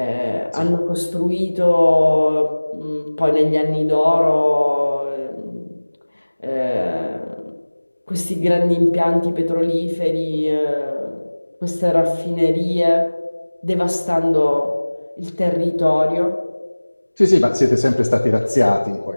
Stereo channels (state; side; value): inverted; both; correlation -1.00